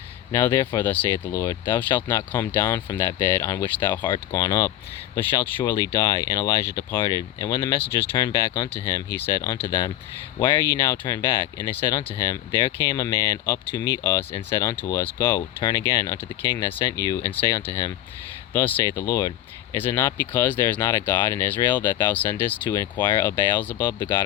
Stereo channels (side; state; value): right; quieter; 13.2 dB